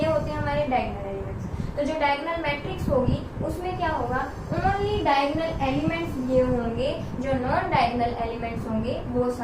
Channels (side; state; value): both; identical; correlation 1.00